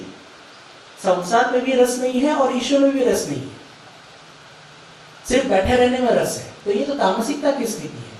संसार में भी रस नहीं है और ईश्वर में भी रस नहीं है, सिर्फ बैठे रहने में रस है, तो ये तो तामसिकता की स्थिति है।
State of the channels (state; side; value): identical; both; correlation 1.00